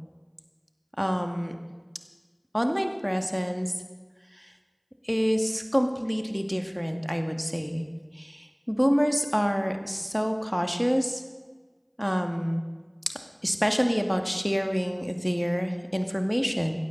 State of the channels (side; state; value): both; identical; correlation 1.00